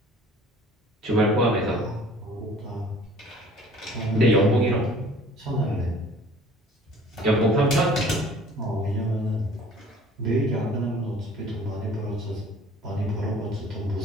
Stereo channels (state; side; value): normal; both; correlation 0.50